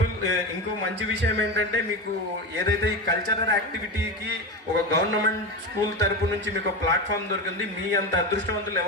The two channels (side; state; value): both; normal; correlation 0.21